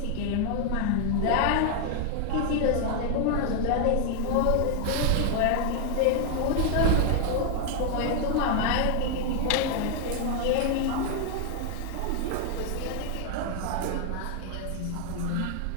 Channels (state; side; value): different; both; correlation 0.00